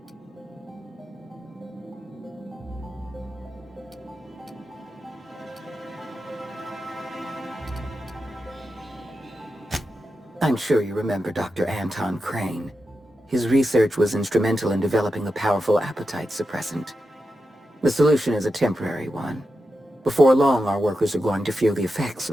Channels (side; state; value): both; normal; correlation 0.89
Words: I'm sure you remember Dr. Anton Crane. His research was instrumental in developing a powerful appetite suppressant. The solution is a temporary one. Before long, our workers are going to feel the effects